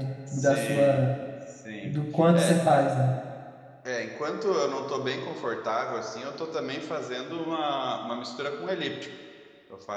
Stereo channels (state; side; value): identical; both; correlation 1.00